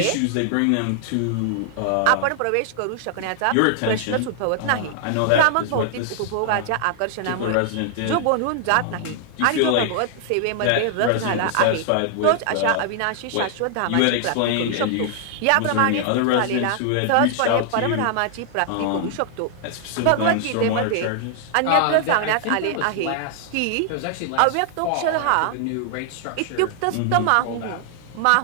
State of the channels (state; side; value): different; both; correlation 0.00